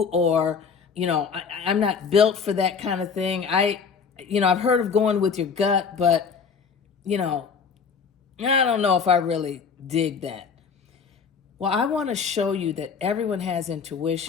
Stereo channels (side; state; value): right; quieter; 5.9 dB